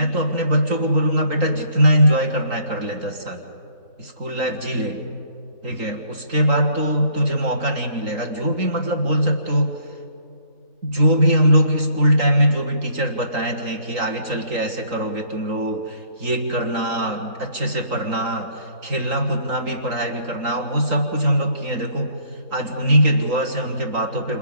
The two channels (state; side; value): late; left; 3.8 ms